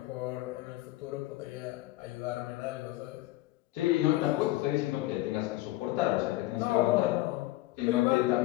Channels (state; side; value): quieter; right; 17.8 dB